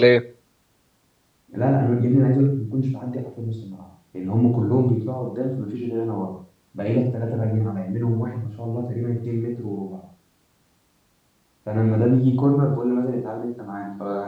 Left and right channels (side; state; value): both; identical; correlation 1.00